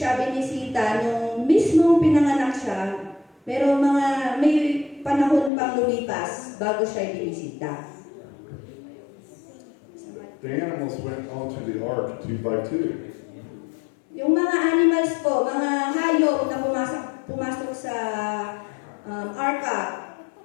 binisita nung mismong pinanganak siya, pero may panahon pang lumipas bago siya binisita. The animals went onto the ark 2 by 2. Yung mga animals po, mga hayop na pumasok sa arka,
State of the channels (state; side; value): drops out; right; at 5.5 s